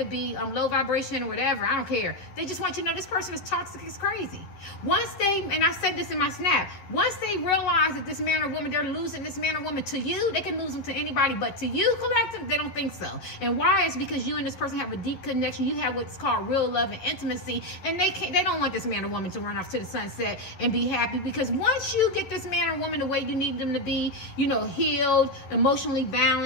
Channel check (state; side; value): late; right; 11 ms